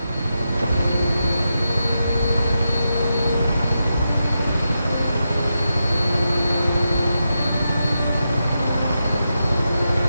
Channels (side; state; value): both; inverted; correlation -0.87